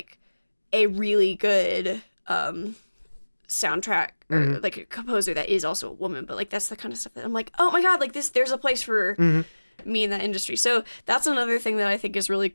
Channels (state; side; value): inverted; both; correlation -1.00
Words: a really good soundtrack or like a composer that is also a woman, but like that's the kind of stuff that I'm like, oh my god, like there's a place for me in that industry. So that's another thing that I think is really